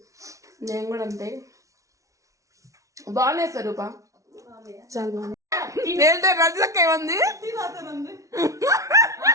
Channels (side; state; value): left; late; 0.16 ms